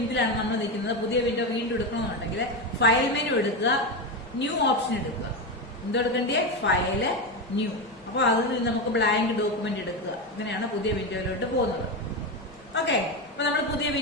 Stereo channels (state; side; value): normal; both; correlation 0.15